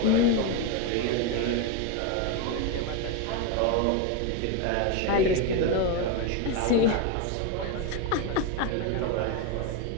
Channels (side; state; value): both; different; correlation 0.02